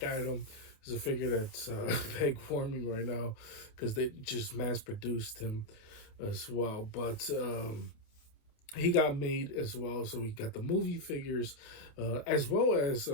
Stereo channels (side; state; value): right; late; 28 ms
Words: Adam is a figure that's peg warming right now because they just mass produced him as well. But he got made as well, so we got the movie figures as well as